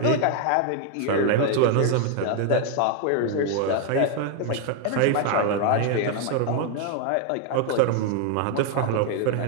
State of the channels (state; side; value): different; both; correlation 0.00